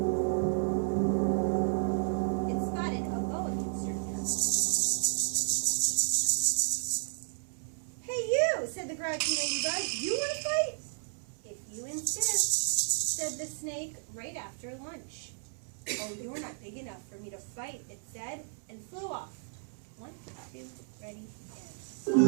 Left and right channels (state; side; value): silent; left; 56 dB below the other